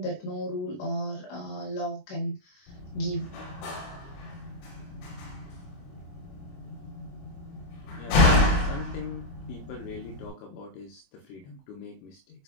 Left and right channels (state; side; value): late; right; 21 ms